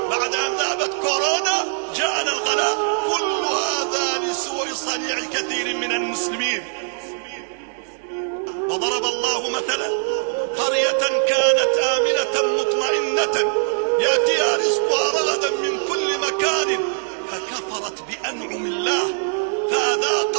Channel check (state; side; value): silent; left; digital silence